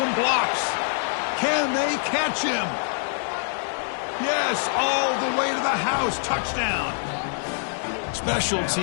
blocks. Can they catch him? Yes, all the way to the house. Touchdown. Special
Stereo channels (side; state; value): right; silent; 62 dB below the other